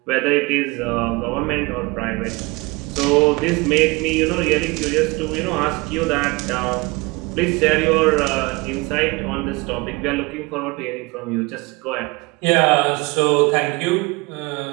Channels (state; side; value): quieter; left; 25.1 dB